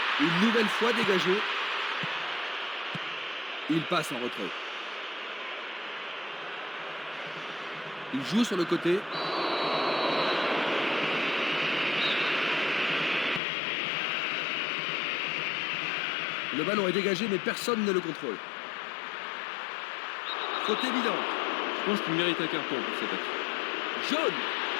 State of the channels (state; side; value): drops out; right; at 13.4 s